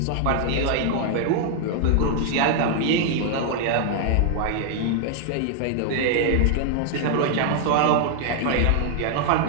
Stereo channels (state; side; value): different; both; correlation 0.00